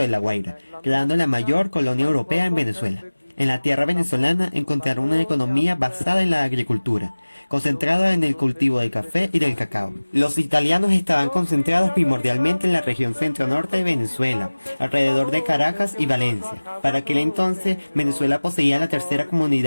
La Guaira, creando la mayor colonia europea en Venezuela. En la tierra venezolana encontraron una economía basada en la agricultura, concentrada en el cultivo del café y del cacao. Los italianos estaban concentrados primordialmente en la región centro-norte de Venezuela, alrededor de Caracas y Valencia. Para aquel entonces, Venezuela poseía la tercera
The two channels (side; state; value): both; inverted; correlation -1.00